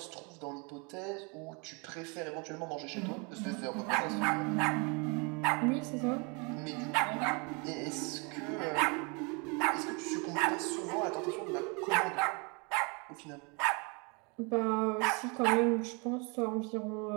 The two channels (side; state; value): left; quieter; 32.0 dB